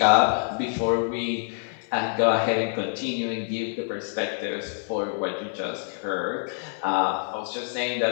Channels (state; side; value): silent; right; 57 dB below the other